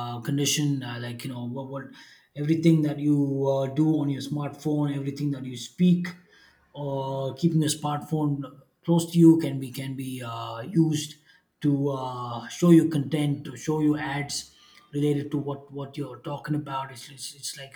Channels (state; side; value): identical; both; correlation 1.00